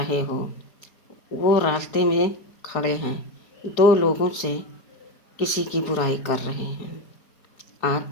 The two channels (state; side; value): late; right; 4.2 ms